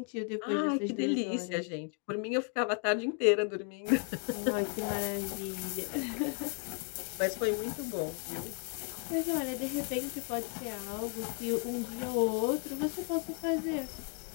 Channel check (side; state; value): right; quieter; 38.3 dB